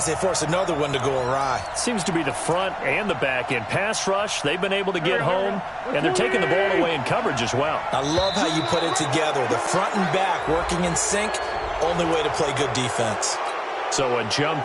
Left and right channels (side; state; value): both; identical; correlation 1.00